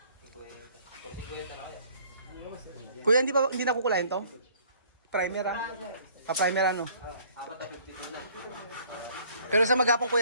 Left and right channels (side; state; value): both; inverted; correlation -0.57